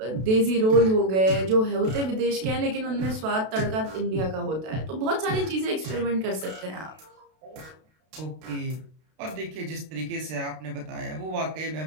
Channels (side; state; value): left; late; 32 ms